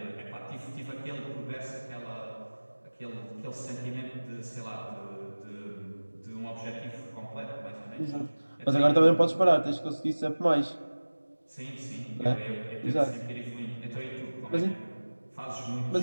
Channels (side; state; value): both; inverted; correlation -1.00